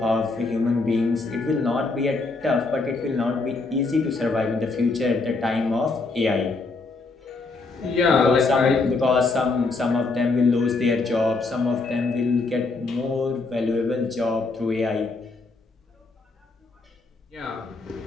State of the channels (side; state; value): right; quieter; 3.7 dB